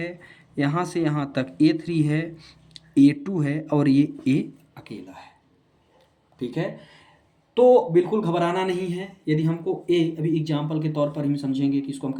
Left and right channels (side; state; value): both; identical; correlation 1.00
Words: यहाँ से यहाँ तक A3 है, A2 है, और ये A अकेला है, ठीक है। तो बिल्कुल घबराना नहीं है। यदि हमको ए, अभी एग्जाम्पल के तौर पर हम समझेंगे कि इसको हम